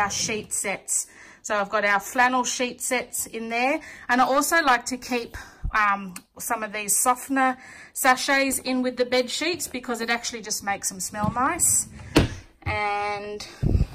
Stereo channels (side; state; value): both; identical; correlation 1.00